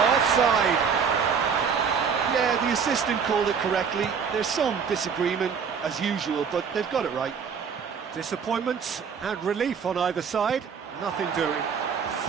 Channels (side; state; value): left; quieter; 6.5 dB